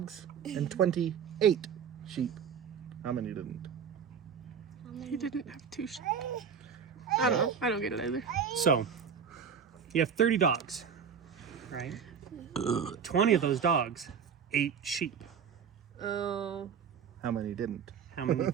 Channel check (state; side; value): quieter; left; 7.1 dB